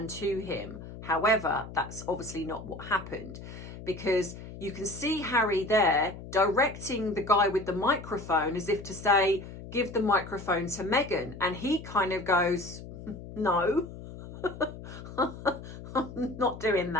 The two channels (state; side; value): noise; left; hum, 13 dB below the sound